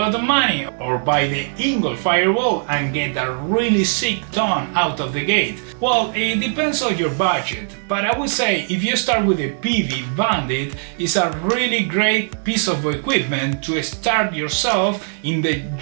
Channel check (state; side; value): silent; left; 66 dB below the other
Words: of money, or buy the ENGL Fireball and get a really sick tone out of the gate? Well, it depends on your budget, but I would say if you start with the Peavey Bandit, it's a really great piece of equipment to start yourself in the